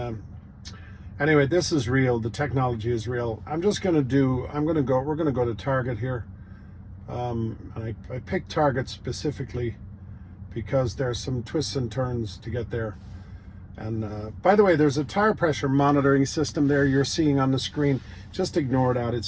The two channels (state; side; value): identical; both; correlation 1.00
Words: anyway, this is real. The technology is real. we're gonna go to Target here. And I picked Target specifically because there's some twists and turns to get there. And by the way, there's a tire pressure monitoring system there you're seeing on the screen. Just ignore that.